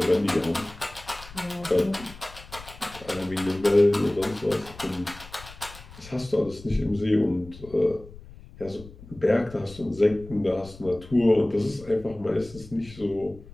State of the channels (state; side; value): noise; left; rumble, 18 dB below the sound